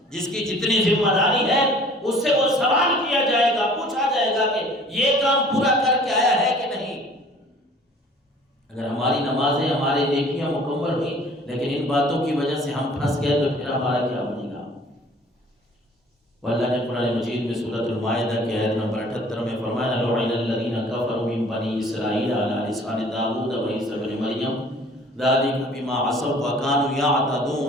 جس کی جتنی ذمہ داری ہے اس سے وہ سوال کیا جائے گا، پوچھا جائے گا کہ یہ کام پورا کر کے آیا ہے کہ نہیں۔ اگر ہماری نمازیں ہماری نیکیاں مکمل ہوئی لیکن ان باتوں کی وجہ سے ہم پھنس گئے تو پھر ہمارا کیا بنے گا؟ واللہ نے قرآن مجید میں سورۃ المائدہ کی آیت نمبر 78 میں فرمایا لعن الذین کفروا من بنی اسرائیل علی لسان داؤد وعیسی ابن مریم ذلک بما عصوا وکانوا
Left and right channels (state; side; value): normal; both; correlation 0.51